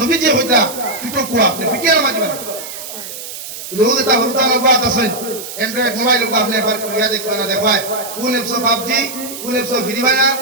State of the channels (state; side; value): noise; right; hiss, 10 dB below the sound